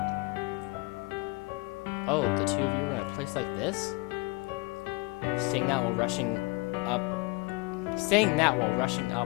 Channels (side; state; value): right; quieter; 25.6 dB